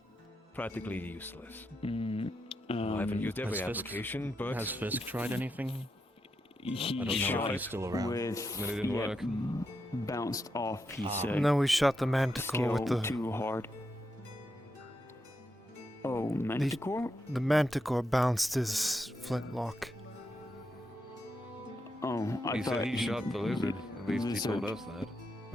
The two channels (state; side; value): normal; both; correlation 0.84